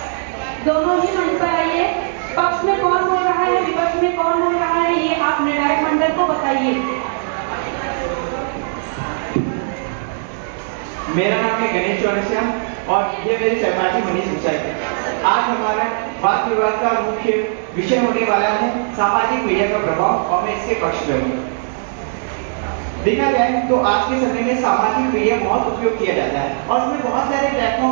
दोनों ही मंच पर आइए। पक्ष में कौन बोल रहा है, विपक्ष में कौन बोल रहा है, ये आप निर्णायक मंडल को बताइए। मेरा नाम है गणेश चौरसिया और ये मेरे सहपाठी मनीष सुताईवार। आज हमारा वाद विवाद का मुख्य विषय होने वाला है सामाजिक मीडिया का प्रभाव और मैं इसके पक्ष में हूँ। देखा जाए तो आज के समय में सामाजिक मीडिया बहुत उपयोग किया जाता है और उसमें बहुत सारे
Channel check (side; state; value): left; silent; digital silence